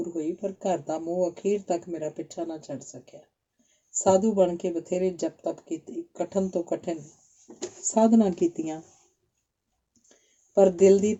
ਹੋਈ। ਪਰ ਘਰ ਦਾ ਮੋਹ ਅਖੀਰ ਤੱਕ ਮੇਰਾ ਪਿੱਛਾ ਨਾ ਛੱਡ ਸਕਿਆ। ਸਾਧੂ ਬਣ ਕੇ ਬਥੇਰੇ ਜਪ ਤਪ ਕੀਤੀ, ਕਠਨ ਤੋਂ ਕਠਿਨ ਸਾਧਨਾ ਕੀਤੀਆਂ, ਪਰ ਦਿਲ ਦੀ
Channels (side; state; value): both; identical; correlation 1.00